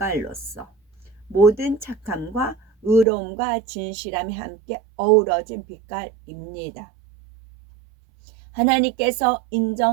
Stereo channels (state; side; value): drops out; left; at 3.1 s